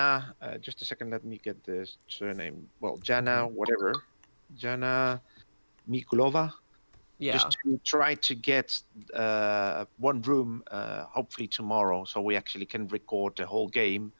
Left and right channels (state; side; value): inverted; both; correlation -1.00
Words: Just a second, let me get the surname. Well, Jana, whatever. Jana Mikulova. Yeah. Just to try to get one room, hopefully tomorrow, so we actually can record the whole game